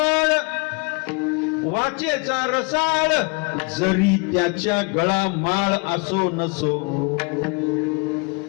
वाचेचा रसाळ जरी त्याच्या गळा माळ असो नसो.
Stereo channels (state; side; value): quieter; right; 32.5 dB